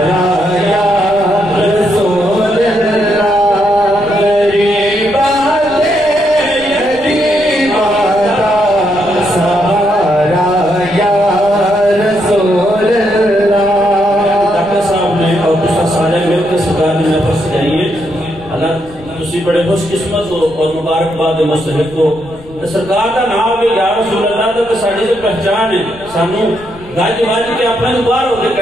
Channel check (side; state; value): left; noise; rumble, 21 dB below the sound